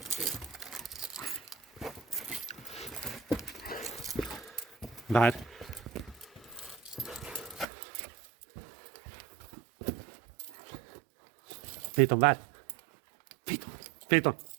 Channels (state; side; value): drops out; left; at 7.7 s